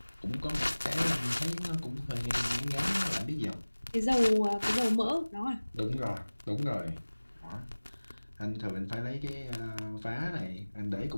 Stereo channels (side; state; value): both; inverted; correlation -1.00